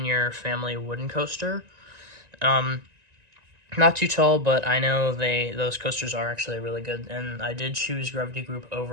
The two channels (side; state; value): left; late; 1.9 ms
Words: Family Wooden Coaster. Not too tall, but I know those coasters are actually really good, and I did choose Gravity Group